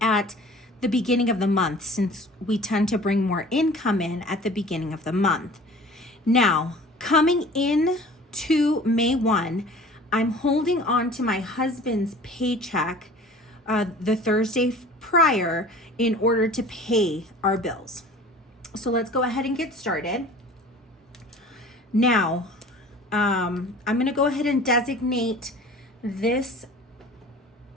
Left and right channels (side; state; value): both; normal; correlation 0.44